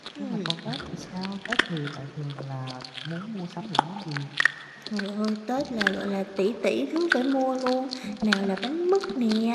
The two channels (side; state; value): both; identical; correlation 1.00